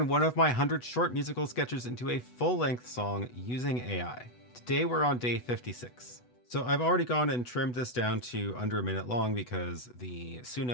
one of my 100 short musical sketches into a full-length song using AI. Today we're on day 56. So I've already gone and trimmed this down to under a minute long because the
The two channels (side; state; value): right; late; 8.1 ms